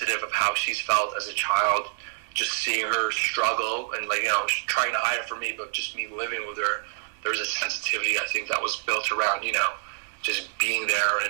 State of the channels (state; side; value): silent; left; digital silence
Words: of how she's felt as a child. Just seeing her struggle and trying to hide it from me, but just me living with her, there was a sensitivity I think that was built around just being there